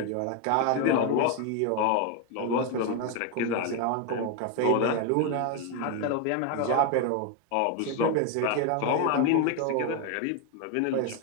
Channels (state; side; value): different; both; correlation 0.01